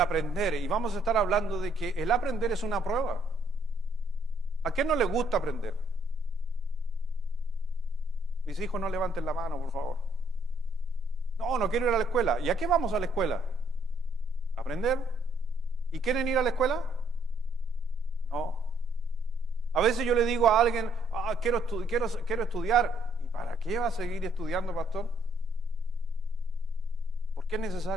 Y vamos a estar hablando de que el aprender es una prueba. ¿A quién no le gusta aprender? Mis hijos, no levanten la mano, por favor. No quiero ir a la escuela. ¿Y a qué vamos a la escuela? ¿Aprender? ¿Y quieren ir a la escuela? No. A veces yo le digo a alguien, quiero estudiar. ¿Y para qué va a seguir estudiando, pastor? ¿Por qué es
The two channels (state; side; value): normal; both; correlation 0.67